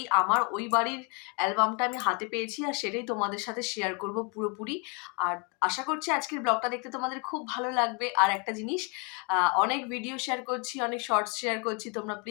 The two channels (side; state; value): right; quieter; 33.1 dB